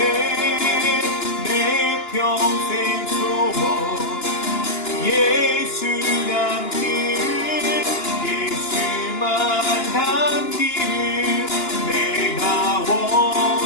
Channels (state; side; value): late; right; 2.9 ms